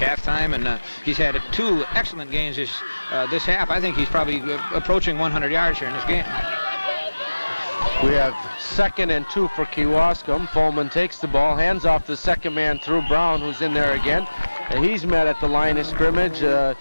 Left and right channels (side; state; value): both; inverted; correlation -1.00